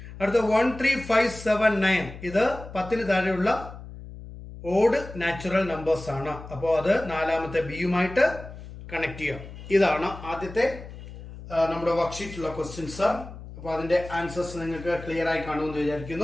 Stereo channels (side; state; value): left; noise; hum, 14 dB below the sound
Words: അടുത്ത 1 3 5 7 9 ഇത് 10 താഴെയുള്ള ഓഡ് നാച്ചുറൽ നമ്പേഴ്സ് ആണ്. അപ്പോൾ അത് നാലാമത്തെ ബിയുമായിട്ട് കണക്ട് ചെയ്യാം. ഇതാണ് ആദ്യത്തെ നമ്മുടെ വർക്ക്ഷീറ്റിലുള്ള ക്വസ്റ്റ്യൻസ്. അപ്പൊ അതിന്റെ ആൻസേഴ്സ് നിങ്ങൾക്ക് ക്ലിയർ ആയി കാണുമെന്ന്